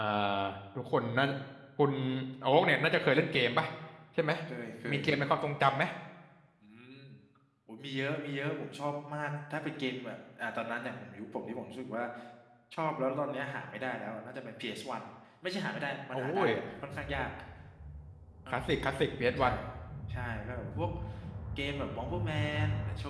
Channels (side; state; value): both; identical; correlation 1.00